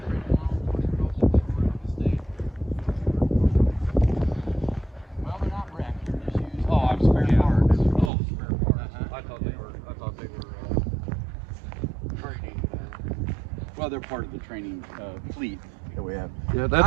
Oh, I'm spare parts. Oh, spare parts. I thought they other part of the training fleet that we have. Yeah, that's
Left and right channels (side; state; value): left; drops out; at 8.1 s